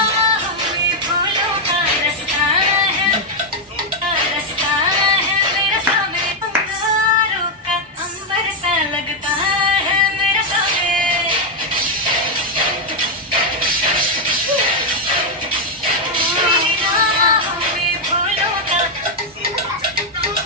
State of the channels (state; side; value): normal; both; correlation 0.01